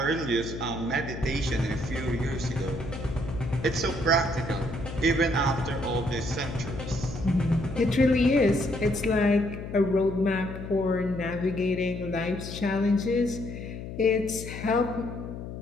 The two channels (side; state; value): left; noise; hum, 9 dB below the sound